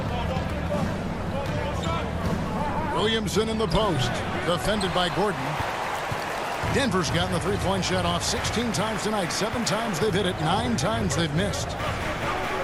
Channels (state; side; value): identical; both; correlation 1.00